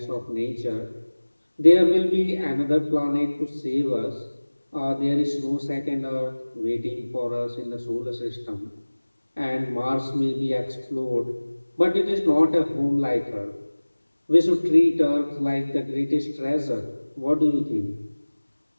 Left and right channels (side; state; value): both; inverted; correlation -1.00